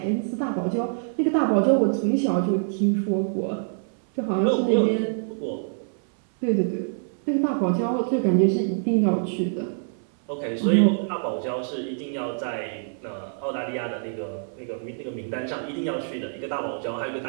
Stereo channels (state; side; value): silent; left; 61 dB below the other